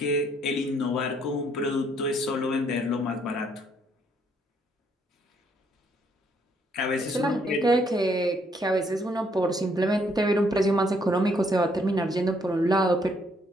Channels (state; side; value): normal; both; correlation 0.69